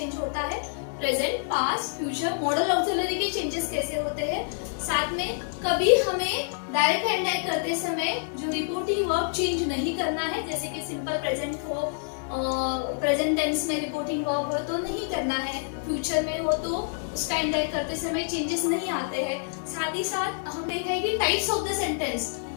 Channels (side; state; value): right; silent; digital silence